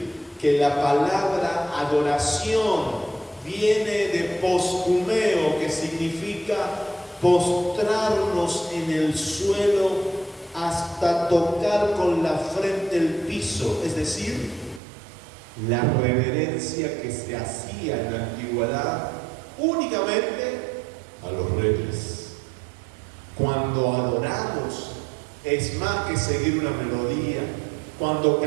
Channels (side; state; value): left; drops out; at 14.8 s